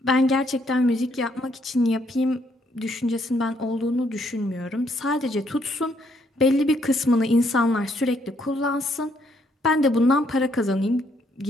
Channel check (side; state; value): both; normal; correlation 0.71